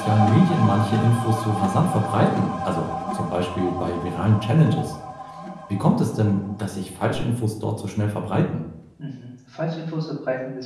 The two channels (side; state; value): both; identical; correlation 1.00